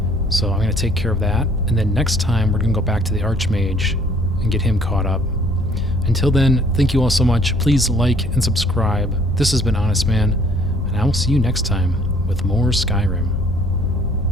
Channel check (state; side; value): normal; both; correlation 0.59